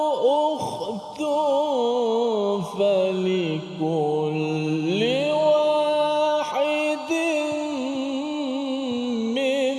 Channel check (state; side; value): identical; both; correlation 1.00